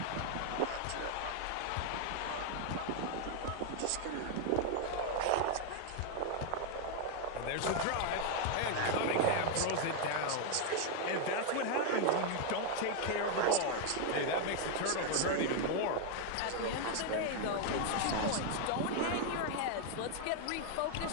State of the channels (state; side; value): different; both; correlation 0.00